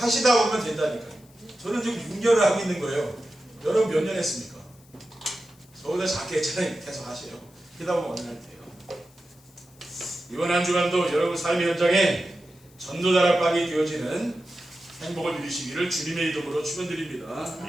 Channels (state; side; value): noise; left; hiss, 28 dB below the sound